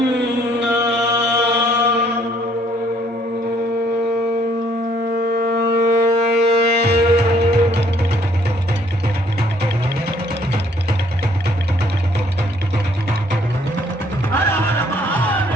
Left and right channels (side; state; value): both; normal; correlation 0.64